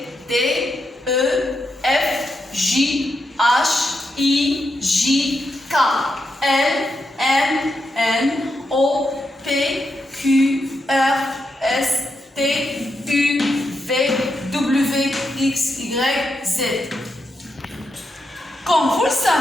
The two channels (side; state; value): both; normal; correlation 0.84